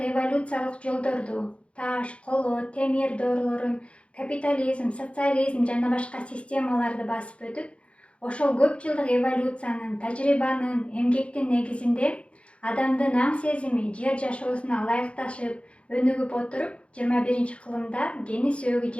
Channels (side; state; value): right; late; 0.060 ms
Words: эволюциялық жолдорду, таш, коло, темир доорулорун, капитализм, социализм жана башка системаларды басып өтүп, ошол көп жылдық эволюциянын, тажрыйбанын, эмгектин негизинде адамдын аң сезими жер жашоосуна ылайыкташып, өнүгүп отуруп, 21-кылымда гени сөөгү